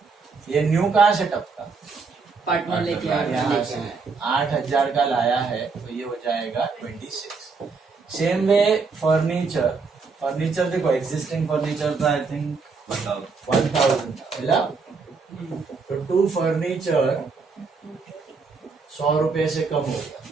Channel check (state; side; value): quieter; left; 4.7 dB